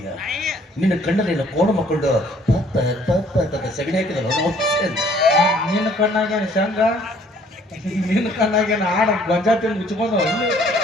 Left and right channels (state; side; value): normal; both; correlation 0.60